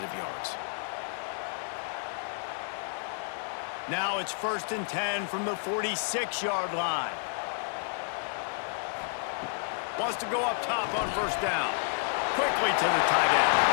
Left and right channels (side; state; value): right; silent; digital silence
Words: yards. Now it's 1st and 10 from the 46-yard line. Wants to go up top on first down. Quickly to the tight end.